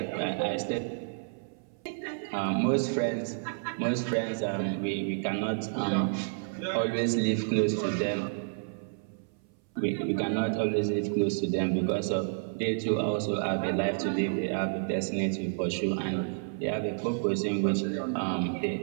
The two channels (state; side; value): silent; left; 58 dB below the other